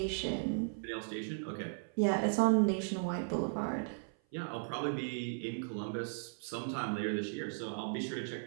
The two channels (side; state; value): left; silent; 53 dB below the other